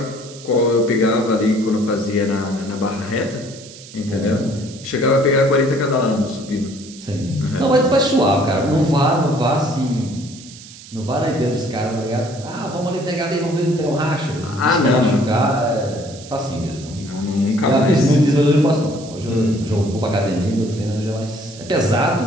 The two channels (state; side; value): noise; right; hiss, 18 dB below the sound